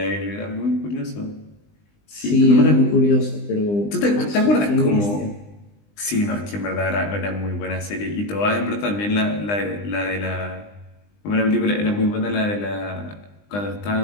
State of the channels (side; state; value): right; late; 20 ms